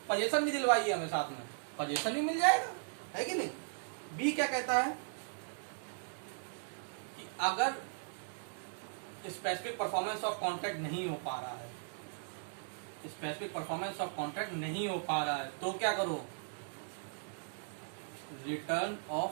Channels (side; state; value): left; silent; digital silence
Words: पोजीशन भी दिलवाइए हमें, साथ में पोजीशन भी मिल जाएगा, है कि नहीं। बी क्या कहता है कि अगर स्पेसिफिक परफॉर्मेंस ऑफ कॉन्ट्रैक्ट नहीं हो पा रहा है, स्पेसिफिक परफॉर्मेंस ऑफ कॉन्ट्रैक्ट नहीं हो पा रहा है, तो क्या करो, रिटर्न